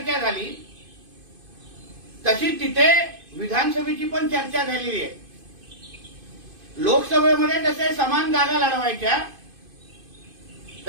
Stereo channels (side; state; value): left; late; 2.5 ms